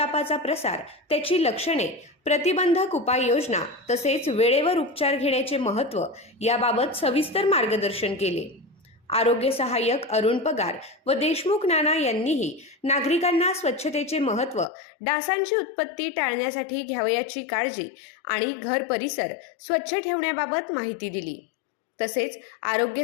प्रसार, त्याची लक्षणे, प्रतिबंधक उपाययोजना तसेच वेळेवर उपचार घेण्याचे महत्त्व याबाबत सविस्तर मार्गदर्शन केले। आरोग्य सहाय्यक अरुण पगार व देशमुख नाना यांनीही नागरिकांना स्वच्छतेचे महत्त्व, डासांची उत्पत्ती टाळण्यासाठी घ्यावयाची काळजी आणि घर परिसर स्वच्छ ठेवण्याबाबत माहिती दिली। तसेच आरोग्य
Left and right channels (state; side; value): drops out; right; at 14.7 s